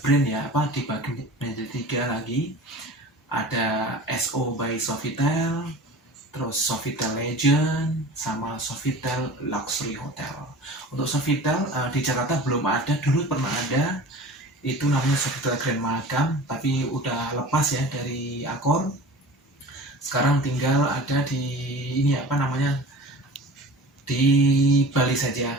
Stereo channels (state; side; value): normal; both; correlation 0.39